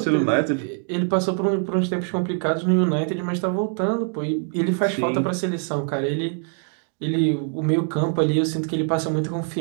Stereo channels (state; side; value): silent; left; 55 dB below the other